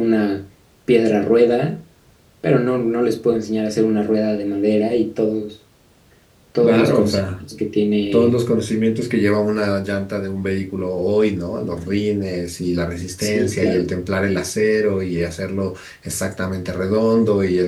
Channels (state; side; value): identical; both; correlation 1.00